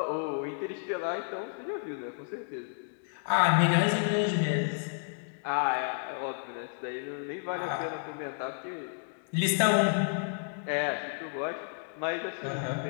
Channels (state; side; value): silent; right; digital silence